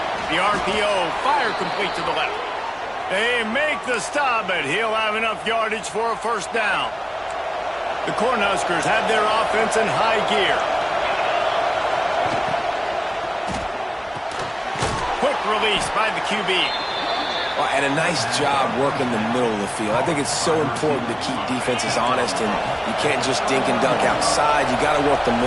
The RPO, fire complete to the left. They make the stop, but he'll have enough yardage for a first down. The Cornhuskers have their offense in high gear. Quick release by the QB. Well, and a nice job working the middle of the field. I think it's so important to keep defenses honest, and you can't just dink and dunk outside. You got to work the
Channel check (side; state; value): both; identical; correlation 1.00